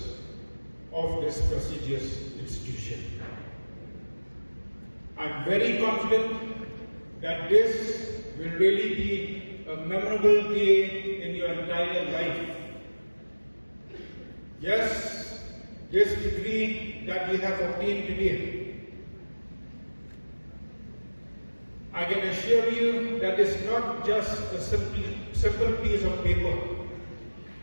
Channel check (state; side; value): inverted; both; correlation -1.00